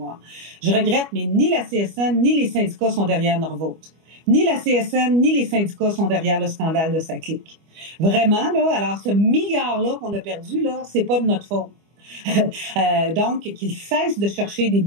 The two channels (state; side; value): late; left; 25 ms